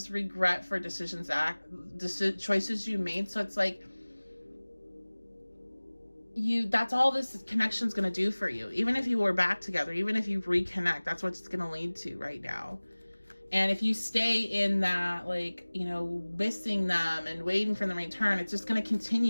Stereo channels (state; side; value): inverted; both; correlation -1.00